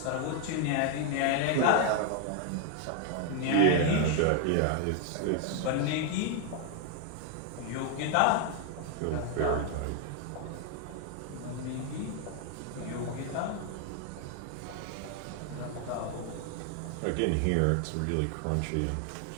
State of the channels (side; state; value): both; different; correlation 0.01